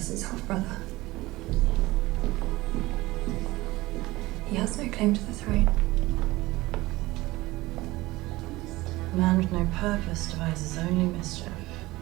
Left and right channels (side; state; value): left; quieter; 19.4 dB